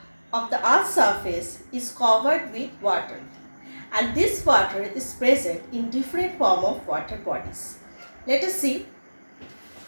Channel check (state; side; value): inverted; both; correlation -1.00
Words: of the earth's surface is covered with water, and this water is present in different form of water bodies. Let us see.